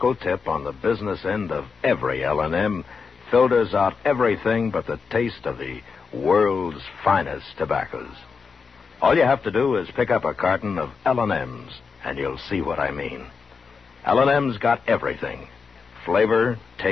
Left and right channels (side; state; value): right; quieter; 5.4 dB